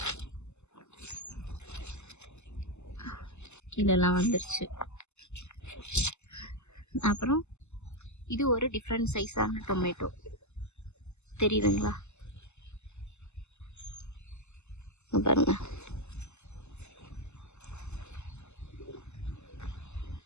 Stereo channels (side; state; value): right; late; 0.82 ms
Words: கீழெல்லாம் வந்துருச்சு. அப்புறம் இது ஒரு டிஃப்ரெண்ட் சைஸான டொமேட்டோ. தெரியுதுங்களா? பாருங்க,